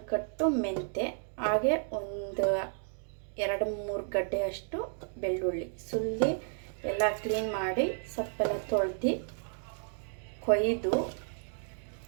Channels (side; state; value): left; silent; digital silence